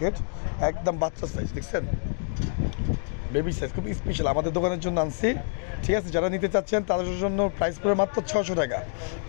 একদম বাচ্চা সাইজ, দেখছেন বেবি সাইজ, খুব স্পেশাল আমাদের দোকানের জন্য আনছি। ঠিক আছে, যারা নিতে চাচ্ছেন তাদের জন্য প্রাইস পড়ে মাত্র 600 টাকা,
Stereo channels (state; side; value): silent; right; digital silence